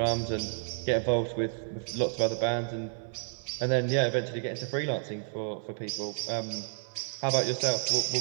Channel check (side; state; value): left; silent; digital silence